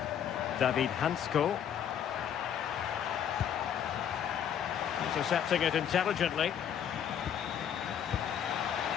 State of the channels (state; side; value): quieter; right; 9.0 dB